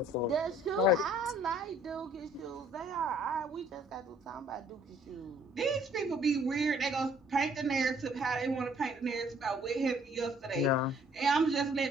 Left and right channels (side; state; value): both; normal; correlation 0.60